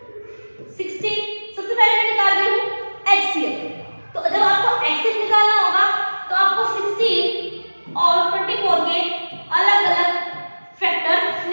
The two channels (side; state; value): both; inverted; correlation -1.00